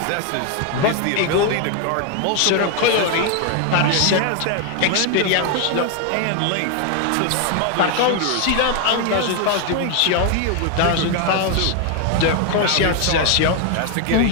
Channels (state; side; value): different; both; correlation 0.01